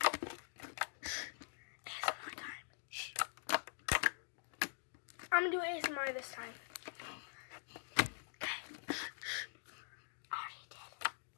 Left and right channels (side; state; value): right; silent; digital silence